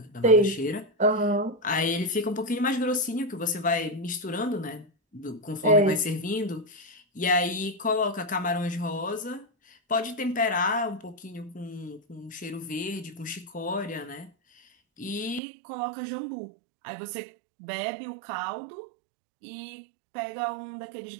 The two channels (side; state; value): left; drops out; at 15.4 s